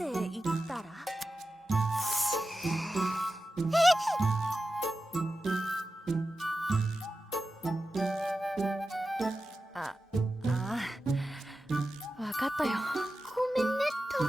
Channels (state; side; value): normal; both; correlation 0.92